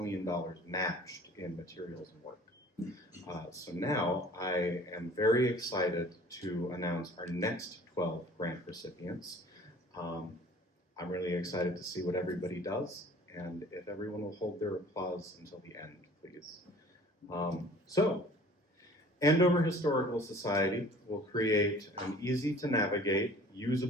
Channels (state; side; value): normal; both; correlation 0.48